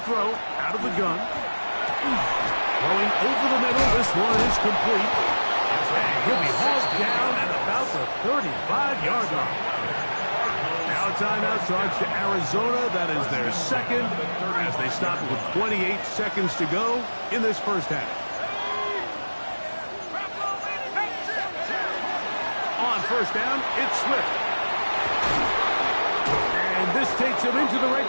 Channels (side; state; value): both; inverted; correlation -1.00